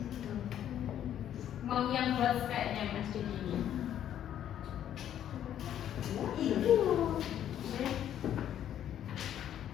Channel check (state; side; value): quieter; right; 10.6 dB